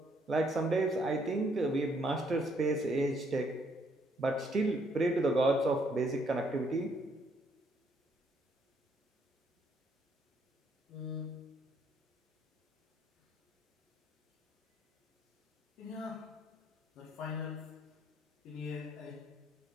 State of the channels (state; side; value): normal; both; correlation 0.69